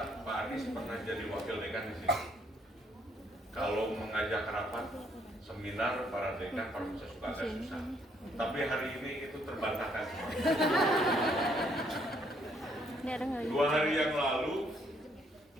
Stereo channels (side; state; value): both; normal; correlation 0.69